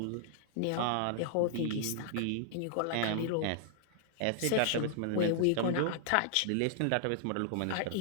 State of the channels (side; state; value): both; different; correlation -0.01